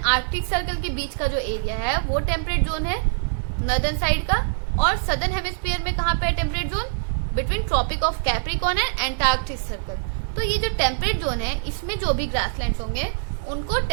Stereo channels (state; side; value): silent; left; digital silence